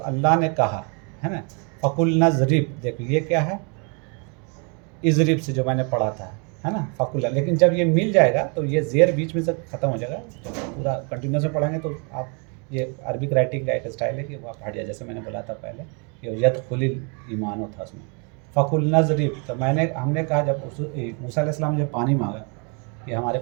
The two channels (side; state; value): left; quieter; 35.6 dB